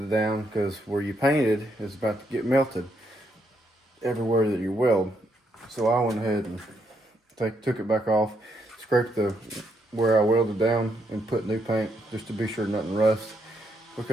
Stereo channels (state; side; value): normal; both; correlation 0.77